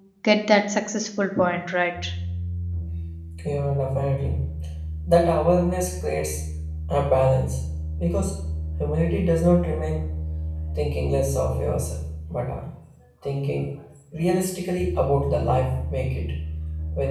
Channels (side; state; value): both; identical; correlation 1.00